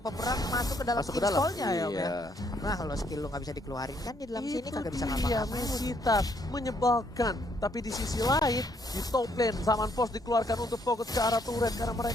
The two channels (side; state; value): both; normal; correlation 0.70